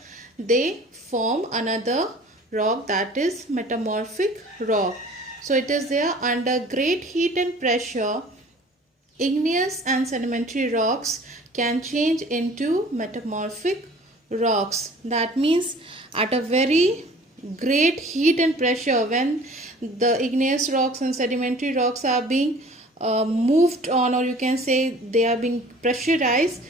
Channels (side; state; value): both; normal; correlation 0.48